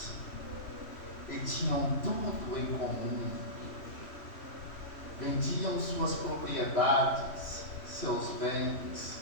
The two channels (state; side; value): late; right; 3.1 ms